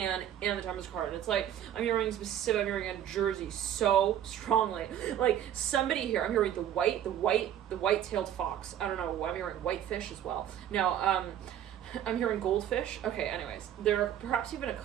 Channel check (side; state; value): left; quieter; 10.6 dB